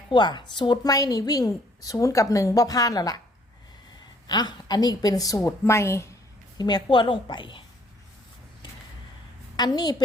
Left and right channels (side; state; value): both; normal; correlation 0.62